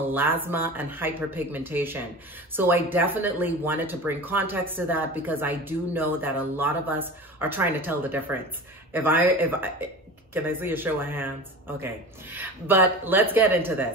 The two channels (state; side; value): normal; both; correlation 0.33